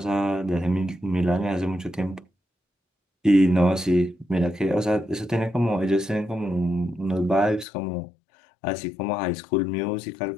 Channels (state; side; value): drops out; right; at 7.7 s